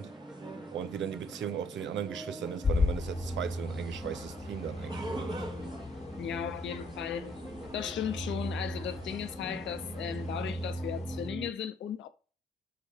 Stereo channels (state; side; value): normal; both; correlation 0.64